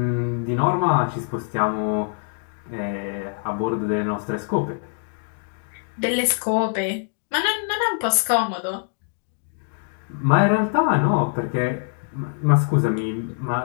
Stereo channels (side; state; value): right; silent; 63 dB below the other